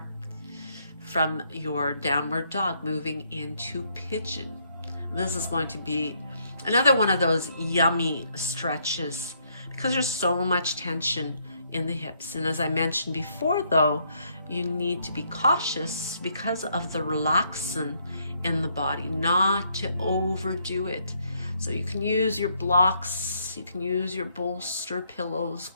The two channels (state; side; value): inverted; both; correlation -0.72